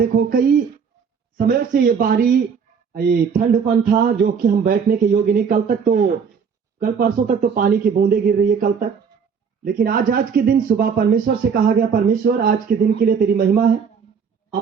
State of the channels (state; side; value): quieter; left; 6.4 dB